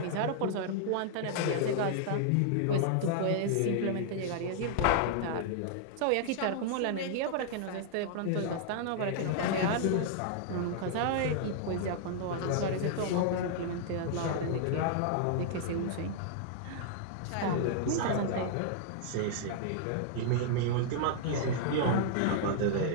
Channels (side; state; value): both; different; correlation -0.01